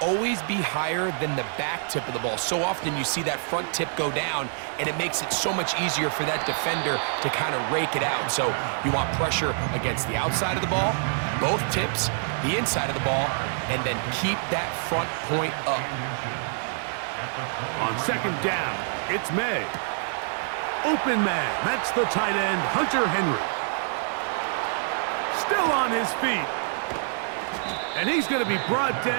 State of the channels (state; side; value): silent; left; 61 dB below the other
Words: always be higher than the back tip of the ball. So often you see that front tip go down, and it makes it so much easier for that defender to kind of rake it out. So you want pressure against the outside of the ball, both tips, the inside of the ball, and then keep that front point up. On second down, it's May. Open man, that's the tight end, Hunter Henry. Still on his feet. And he's going to be brought